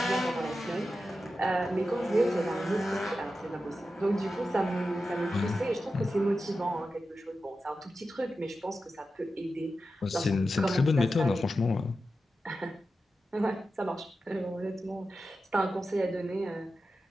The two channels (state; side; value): normal; both; correlation 0.91